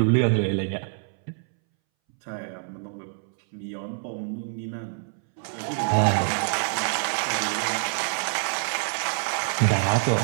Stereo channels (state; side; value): silent; left; 61 dB below the other